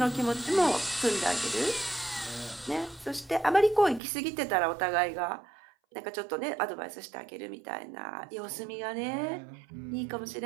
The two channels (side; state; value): left; drops out; at 4.0 s